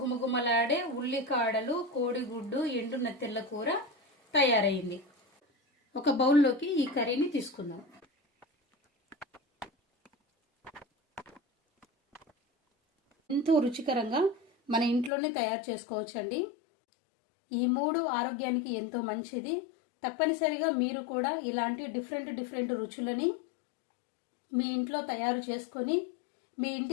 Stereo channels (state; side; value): drops out; right; at 15.1 s